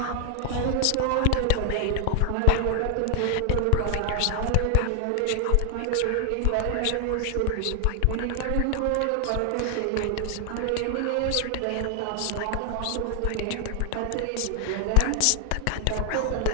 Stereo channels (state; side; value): different; both; correlation 0.00